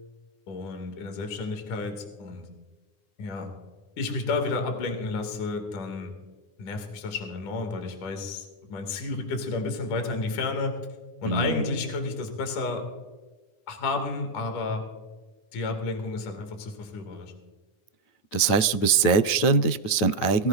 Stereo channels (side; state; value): right; late; 9.7 ms